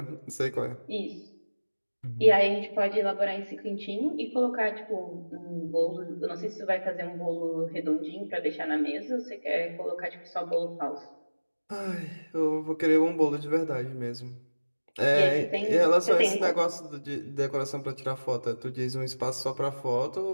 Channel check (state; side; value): inverted; both; correlation -1.00